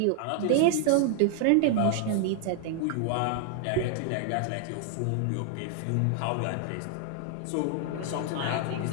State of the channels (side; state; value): both; different; correlation 0.00